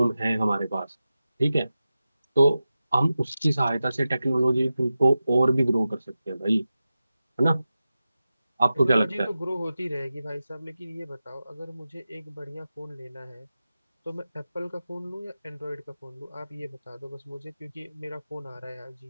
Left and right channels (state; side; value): inverted; both; correlation -0.93